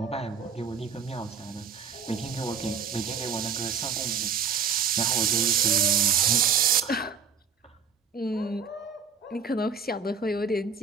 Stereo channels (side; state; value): left; quieter; 6.2 dB